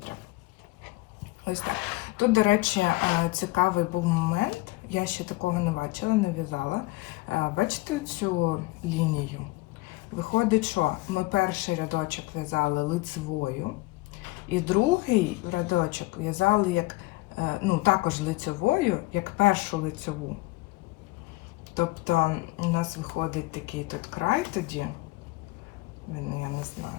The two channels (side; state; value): right; quieter; 21.3 dB